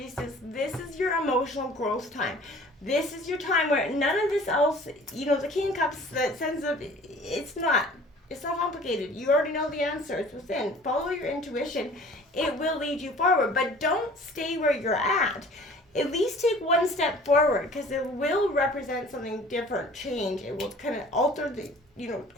this is your emotional growth time. This is your time where none of this else, the King of Cups, that sense of, it's not complicated. You already know the answer. It's within. Follow your intuition. It will lead you forward, but don't stay where you're at. At least take one step forward, because it will represent something different, change. It will kind of alter the,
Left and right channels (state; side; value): normal; both; correlation 0.48